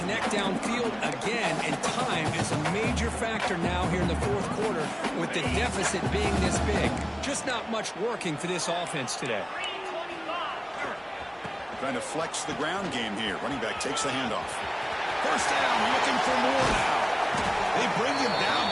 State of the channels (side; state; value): both; identical; correlation 1.00